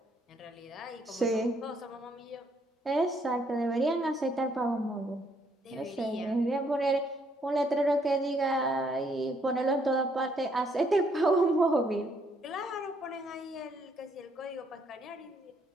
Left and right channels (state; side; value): normal; both; correlation 0.70